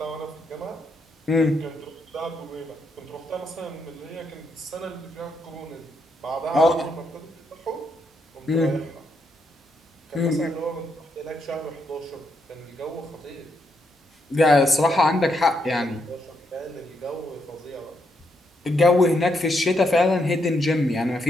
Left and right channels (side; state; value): both; normal; correlation 0.78